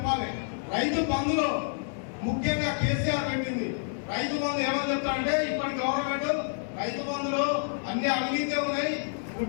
రైతు బంధులో ముఖ్యంగా కేసీఆర్ పెట్టింది. రైతు బంధు ఏమని చెప్తారంటే ఇప్పటి గవర్నమెంట్ రైతు బంధులో అన్ని అవినీతి ఉన్నాయి.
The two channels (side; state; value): right; silent; digital silence